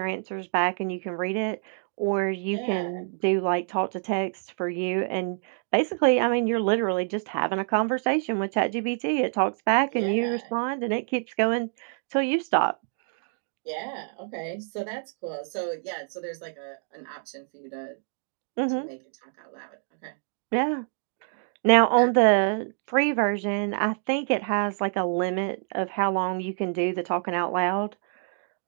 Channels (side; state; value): left; silent; digital silence